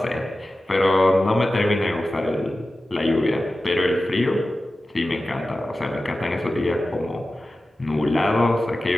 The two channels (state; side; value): normal; both; correlation 0.95